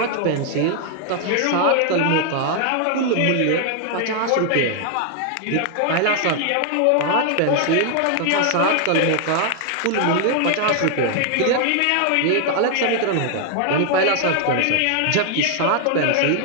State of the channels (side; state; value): both; different; correlation 0.00